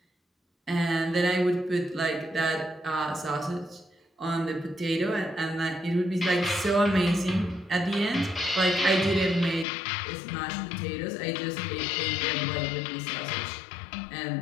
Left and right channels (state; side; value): drops out; right; at 9.7 s